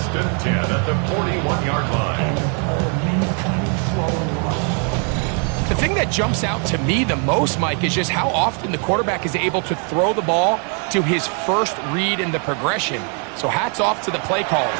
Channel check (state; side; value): quieter; left; 39.9 dB